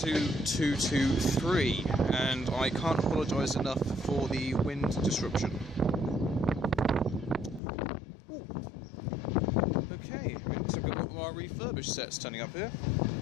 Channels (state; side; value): drops out; right; at 7.6 s